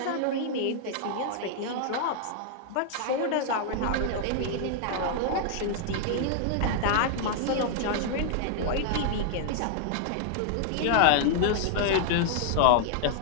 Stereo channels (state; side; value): different; both; correlation -0.01